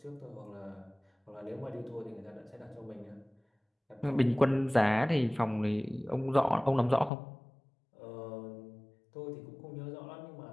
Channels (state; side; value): drops out; right; at 7.1 s